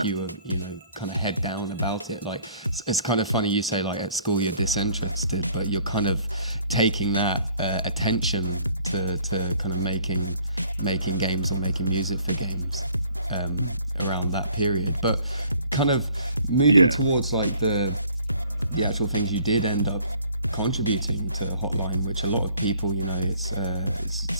You were, you know, kind of head down about it. Like, it's kind of funny you say like at school you're disinterested, but you're kind of taking that attention to kind of making games or making music for games around that period. But kind of moving towards like the actual things you did end up contributing to Hotline, which a lot of people, you know, it's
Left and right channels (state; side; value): inverted; both; correlation -0.57